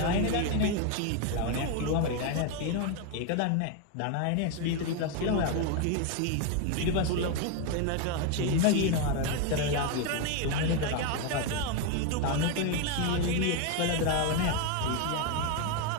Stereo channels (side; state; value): both; different; correlation 0.02